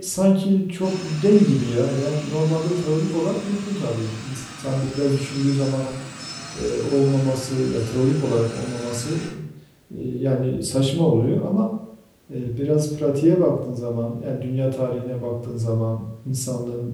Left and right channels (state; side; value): identical; both; correlation 1.00